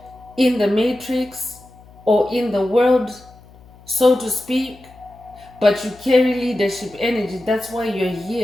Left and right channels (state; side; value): noise; left; hum, 24 dB below the sound